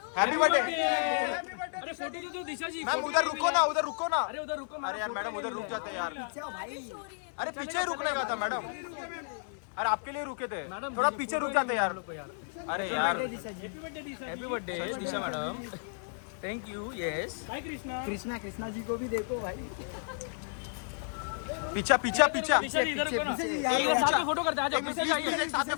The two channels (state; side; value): silent; right; 56 dB below the other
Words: Happy birthday. अरे फोटो तो दो दिशा जी। मैम उधर रुको ना, उधर रुको ना। अरे उधर रुको। अरे यार मैडम उधर रुक जाते यार। अरे पीछे रुकने का था मैडम। अरे आपके लिए रुके थे, थोड़ा पीछे रुक जाते यार। अरे यार happy birthday Disha madam, thank you. Yes भाई कृष्णा जी को भी देखो भाई। पीछा पीछा पीछा दिशा जी इधर रुको ना, पीछे, एक साथ में फोटो करते हैं। आ जाओ, पीछे जाइए, एक साथ में